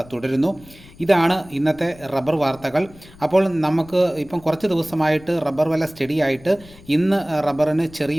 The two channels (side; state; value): left; noise; rumble, 22 dB below the sound